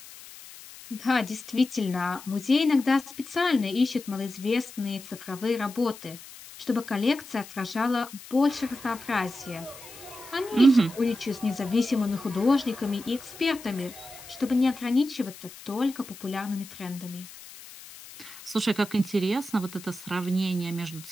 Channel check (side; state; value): left; noise; hiss, 17 dB below the sound